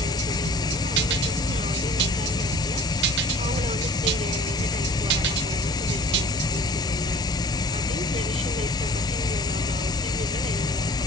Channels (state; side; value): normal; both; correlation 0.43